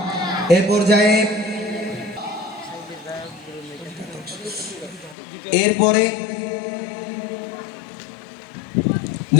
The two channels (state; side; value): drops out; right; at 5.2 s